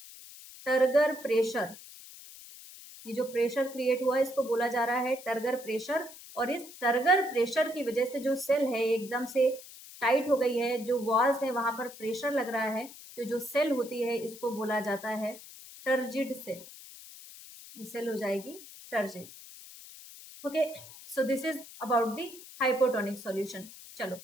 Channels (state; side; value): noise; left; hiss, 17 dB below the sound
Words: टर्गर प्रेशर। ये जो प्रेशर क्रिएट हुआ है इसको बोला जा रहा है टर्गर प्रेशर, और इस टर्गर प्रेशर की वजह से जो सेल है एकदम से टाइट हो गई है, जो वॉल्स है वहां पर प्रेशर लग रहा है, तो जो सेल होती है इसको बोला जाता है टर्जिड सेल, ये सेल हो जाएगी turgid. Okay, so this is about the hypotonic solution. चलो